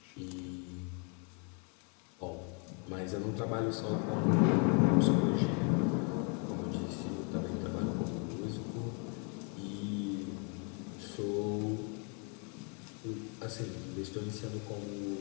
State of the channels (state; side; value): quieter; right; 37.7 dB